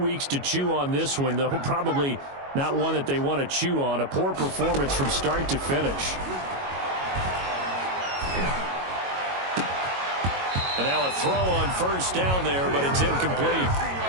to chew on this one, though probably not one that they want to chew on. A poor performance from start to finish. And now a throw on first down there, but it's incomplete.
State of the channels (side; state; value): left; late; 22 ms